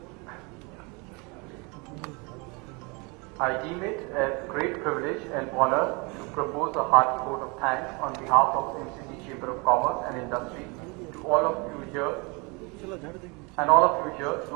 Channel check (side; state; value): left; quieter; 29.3 dB